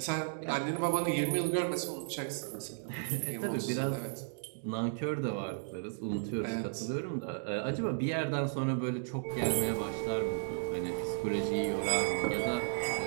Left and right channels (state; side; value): silent; left; digital silence